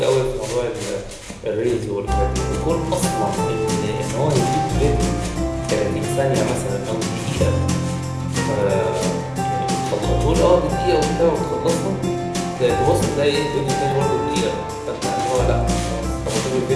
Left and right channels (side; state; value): both; identical; correlation 1.00